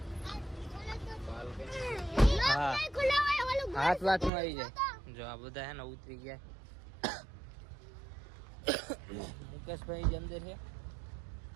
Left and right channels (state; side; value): drops out; left; at 4.3 s